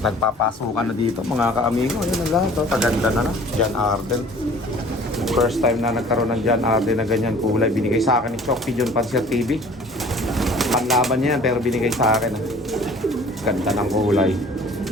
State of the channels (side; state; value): both; normal; correlation 0.49